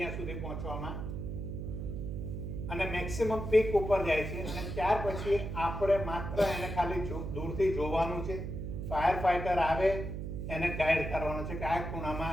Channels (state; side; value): noise; right; hum, 5 dB below the sound